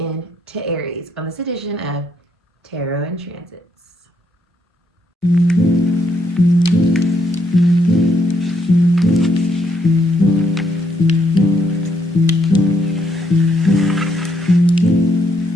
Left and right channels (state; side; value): normal; both; correlation 0.74